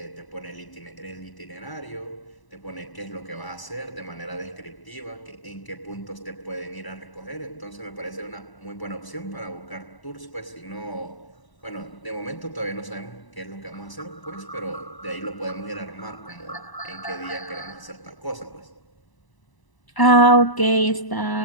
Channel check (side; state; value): right; late; 1.0 ms